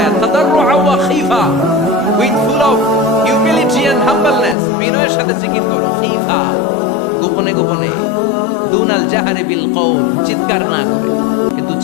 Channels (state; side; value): drops out; right; at 4.5 s